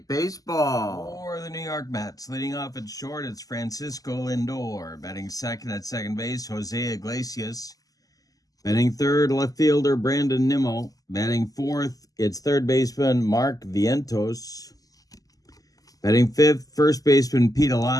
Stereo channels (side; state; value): right; late; 0.17 ms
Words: Baseball. For the New York Mets, leading off at short, it's Francisco Lindor. Batting second at second base, Jose Iglesias. Batting third, left fielder Brandon Nimmo. Batting fourth, it's third baseman Mark Vientos. Batting fifth, first baseman Pete